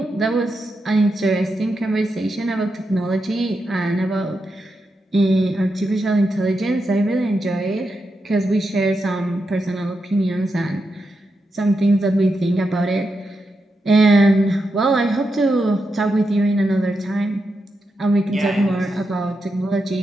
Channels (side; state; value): both; normal; correlation 0.86